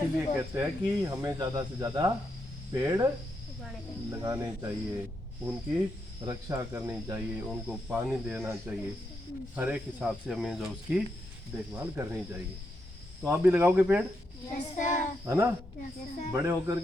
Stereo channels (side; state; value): both; normal; correlation 0.82